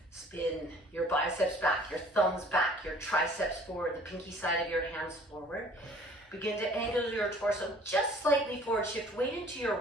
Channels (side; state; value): both; normal; correlation 0.53